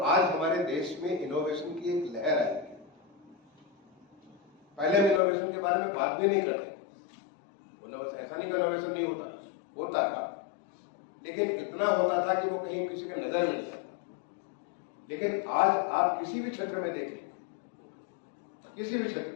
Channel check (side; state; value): right; drops out; at 5.2 s